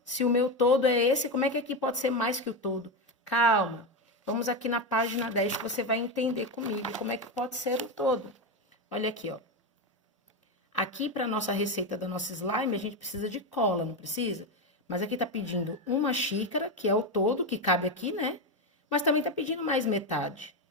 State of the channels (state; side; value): normal; both; correlation 0.13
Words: Se o meu todo é esse, como é que aqui pode ser mais que o todo? Calma, vamos aqui na página 10 que você vai entender comigo como é que pode ser o todo. Olha aqui, ó. Aqui, para a nossa receita da nossa slime, a gente precisa de cola, não precisa? Mas aqui tá pedindo uma xícara, que é o todo, que cabe aqui, né? Mas também tá pedindo mais metade,